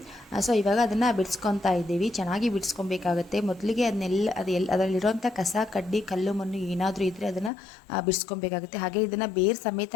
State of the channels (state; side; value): drops out; right; at 7.5 s